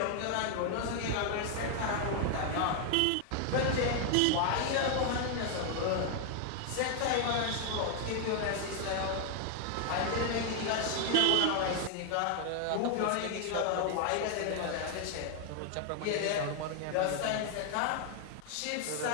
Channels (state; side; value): different; both; correlation 0.00